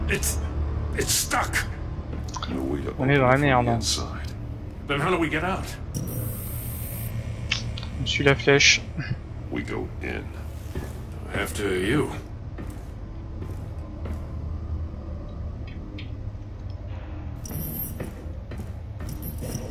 It's stuck. On est dans la merde. Then how do we get out? Je suis la flèche. We go in. After you.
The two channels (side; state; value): both; identical; correlation 1.00